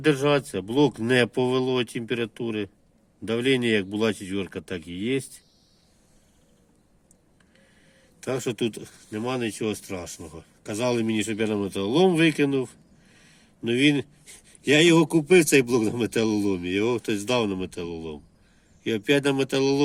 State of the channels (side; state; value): both; identical; correlation 1.00